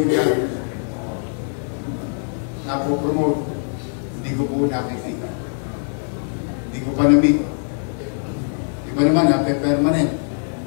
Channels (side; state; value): right; silent; 64 dB below the other